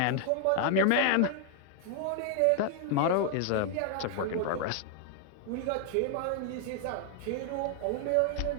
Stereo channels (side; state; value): both; different; correlation 0.00